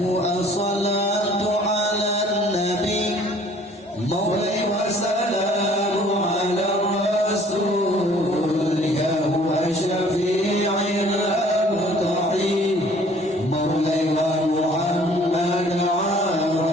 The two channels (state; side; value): normal; both; correlation 0.55